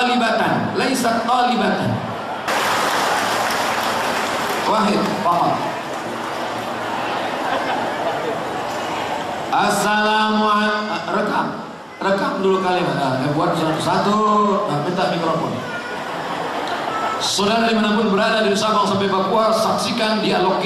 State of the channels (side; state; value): both; identical; correlation 1.00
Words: laisa talibatan. Wahid faqat. Assalamualaikum. Rekam dulu kalimat. Buat satu. Minta mikrofon. Saudara dimanapun berada dari Sabang sampai Papua, saksikan dialog